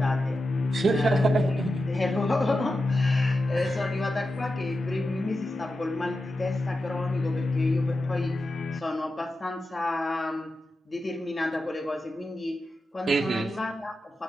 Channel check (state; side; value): normal; both; correlation 0.90